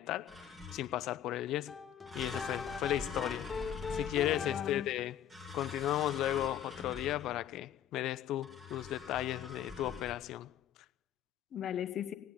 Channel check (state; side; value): quieter; right; 10.4 dB